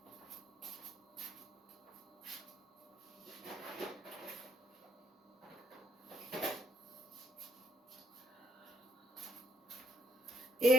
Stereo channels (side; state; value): both; normal; correlation 0.70